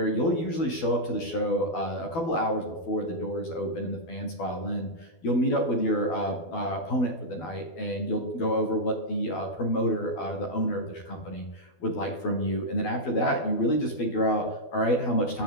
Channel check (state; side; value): late; right; 12 ms